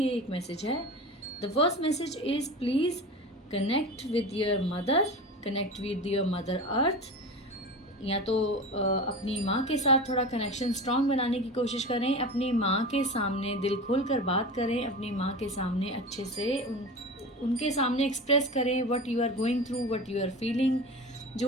एक मैसेज है. The first message is please connect with your mother, connect with your mother earth. या तो अपनी माँ के साथ थोड़ा कनेक्शन स्ट्रॉन्ग बनाने की कोशिश करें, अपनी माँ के सामने दिल खोल कर बात करें, अपनी माँ के सामने अच्छे से उनके सामने एक्सप्रेस करें what you are going through, what you are feeling.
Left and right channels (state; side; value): normal; both; correlation 0.30